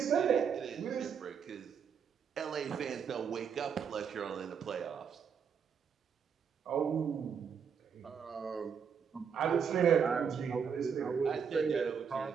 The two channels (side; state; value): left; quieter; 6.9 dB